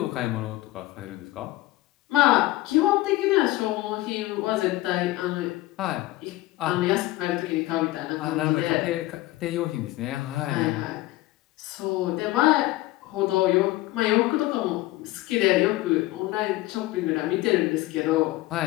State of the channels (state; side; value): quieter; right; 17.9 dB